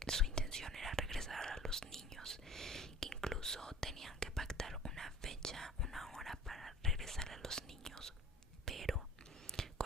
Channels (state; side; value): normal; both; correlation 0.44